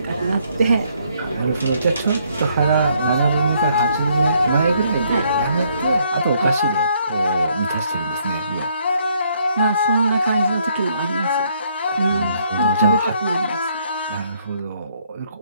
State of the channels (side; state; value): both; inverted; correlation -0.69